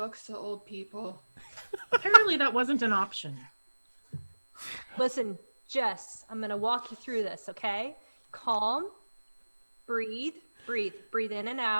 to old people? apparently that wasn't an option. Listen, Jess, I'm gonna walk you through this, okay? Calm, breathe in and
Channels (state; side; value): inverted; both; correlation -1.00